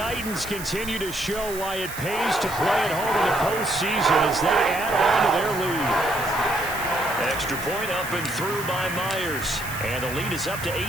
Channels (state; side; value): noise; right; hiss, 11 dB below the sound